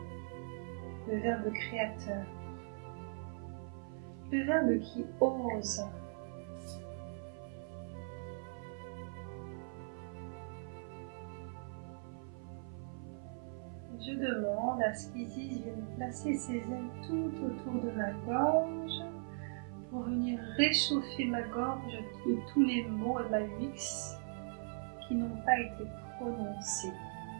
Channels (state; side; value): silent; left; 51 dB below the other